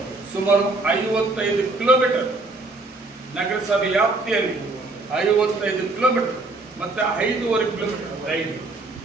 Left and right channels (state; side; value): quieter; left; 3.2 dB